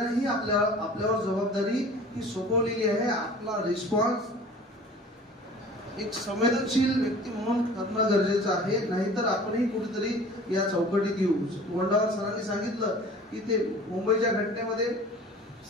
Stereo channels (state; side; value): normal; both; correlation 0.45